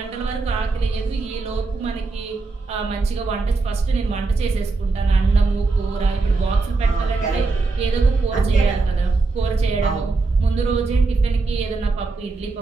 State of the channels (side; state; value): left; quieter; 3.8 dB